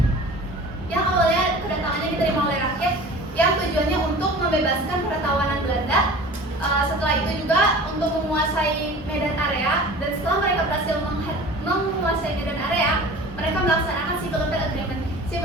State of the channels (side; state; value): both; normal; correlation 0.41